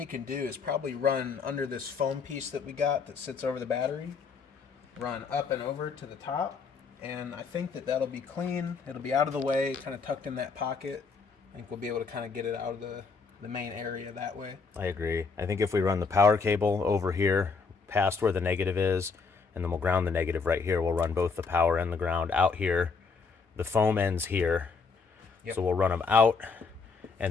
can do is probably run under this foam piece that we got that sits over the battery, run up and over to the top, and I think that that'll be clean. It'll be out of the way, kind of tucked in that pocket. I think we'll be able to kind of get it out of the main area that way. I agree. I think if we run the power cable over here past where the negative is, and then we'll ground the negative right here, we'll run both the power and the ground out here. The foam ends here. Yep. So we'll run them out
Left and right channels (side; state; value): right; quieter; 4.9 dB